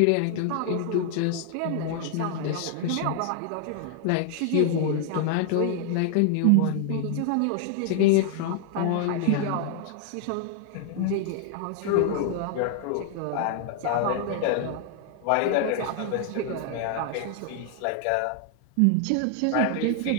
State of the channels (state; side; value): different; both; correlation 0.00